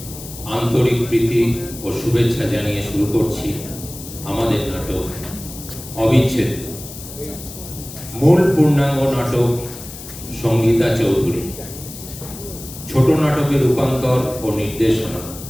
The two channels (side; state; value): left; noise; hiss, 13 dB below the sound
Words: আন্তরিক প্রীতি ও শুভেচ্ছা জানিয়ে শুরু করছি আমাদের নাটক অবিচ্ছেদ্য। মূল পূর্ণাঙ্গ নাটক সঙ্গীতা চৌধুরী, ছোট নাটকের রূপান্তর ও নির্দেশনা